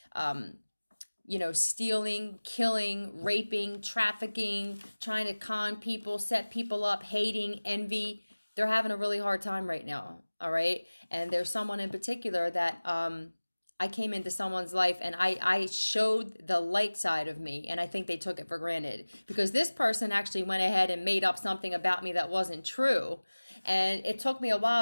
stealing, killing, raping, trafficking, trying to con people, set people up, hating, envy, they're having a really hard time right now. All right. And there's someone in particular that I came into someone's life and I showed the light side of me, and I think they took it for granted because this person actually went ahead and made up something about me that wasn't true. And it took me a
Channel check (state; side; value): inverted; both; correlation -1.00